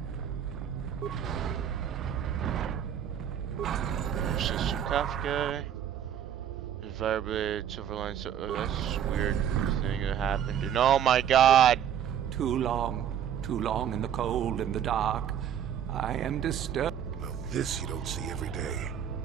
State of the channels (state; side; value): quieter; left; 9.4 dB